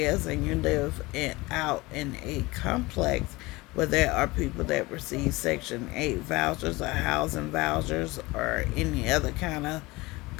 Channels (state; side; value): quieter; right; 22.0 dB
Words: and you live out in a complex where there are people that receive Section 8 vouchers or housing vouchers or any other kind of